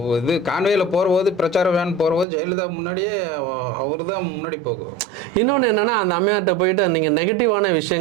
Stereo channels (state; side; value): drops out; left; at 2.2 s